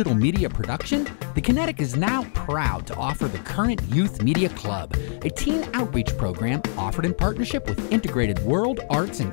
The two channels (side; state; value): right; silent; 60 dB below the other